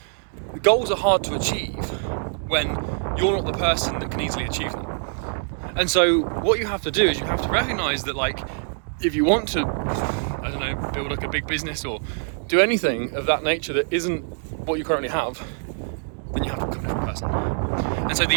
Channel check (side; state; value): left; silent; digital silence